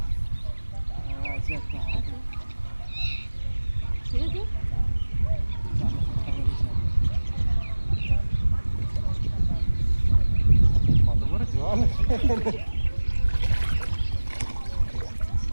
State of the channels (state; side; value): inverted; both; correlation -1.00